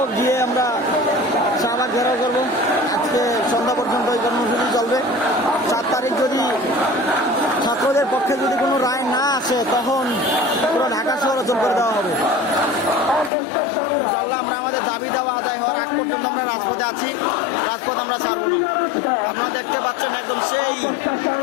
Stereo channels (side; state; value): right; drops out; at 13.3 s